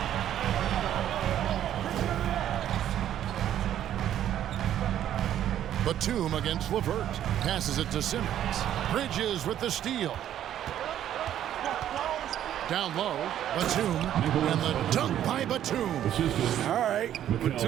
Batum against LeVert. Passes it to Simmons. Bridges with the steal. Down low, Batum, and the dunk by Batum. All right,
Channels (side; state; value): left; quieter; 11.1 dB